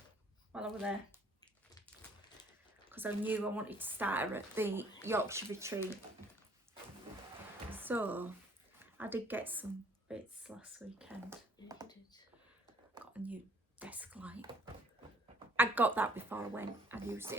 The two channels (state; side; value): normal; both; correlation 0.59